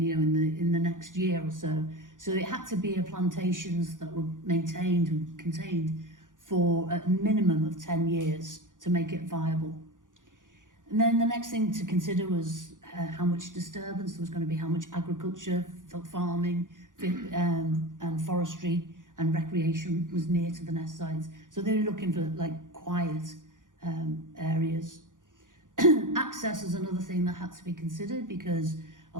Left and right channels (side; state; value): left; late; 0.88 ms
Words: the next year or so. So it had to be plantations that were maintained and contained for a minimum of 10 years to make it viable. And then the next thing to consider was how much disturbance there was going to be, how much agriculture, farming, and forestry and recreation was near to the nest sites. So they were looking for quiet areas. Access is another thing that had to be considered because